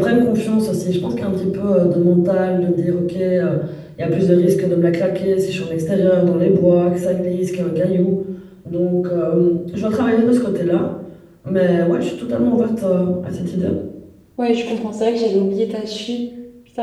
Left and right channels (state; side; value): identical; both; correlation 1.00